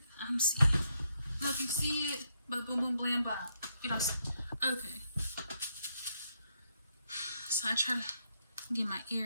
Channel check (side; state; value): both; inverted; correlation -0.79